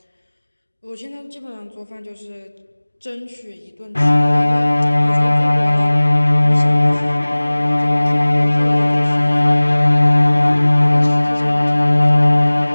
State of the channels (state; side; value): inverted; both; correlation -1.00